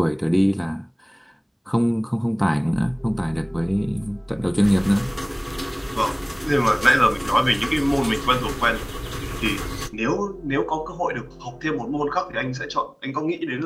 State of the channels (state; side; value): identical; both; correlation 1.00